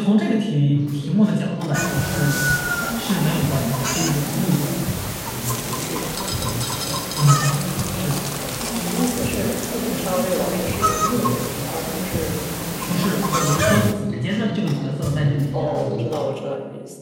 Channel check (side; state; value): both; identical; correlation 1.00